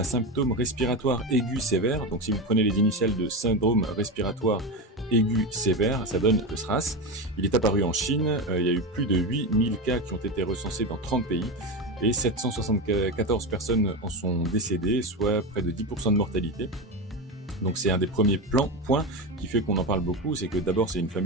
symptôme respiratoire aigu sévère. Donc si vous prenez les initiales de syndrome respiratoire aigu sévère, ça donne le SRAS. Il est apparu en Chine, il y a eu plus de 8000 cas qui ont été recensés dans 30 pays et 774 personnes en sont décédées, soit près de 10% de mortalité. Donc c'est un des premiers points qui fait qu'on en parle beaucoup, c'est que d'abord c'est une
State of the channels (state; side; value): normal; both; correlation 0.18